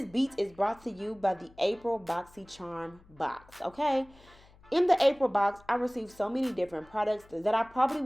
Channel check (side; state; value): left; noise; hum, 26 dB below the sound